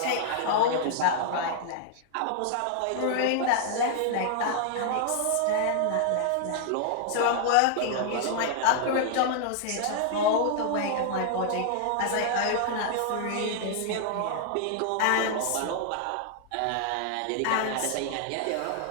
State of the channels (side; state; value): both; different; correlation -0.01